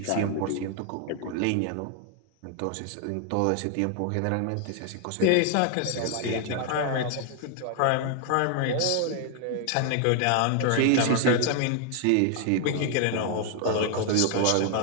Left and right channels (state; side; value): different; both; correlation 0.00